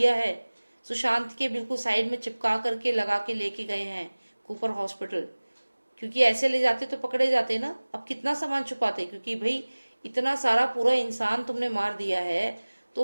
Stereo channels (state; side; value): inverted; both; correlation -1.00